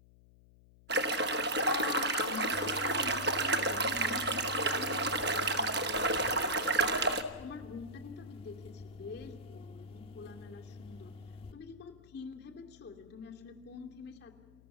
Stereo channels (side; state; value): left; noise; hum, 25 dB below the sound